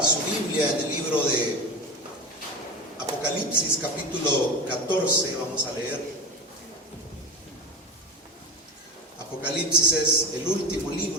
su Biblia en el libro de Apocalipsis, capítulo 14, vamos a leer. Apocalipsis es el último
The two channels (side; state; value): both; normal; correlation 0.27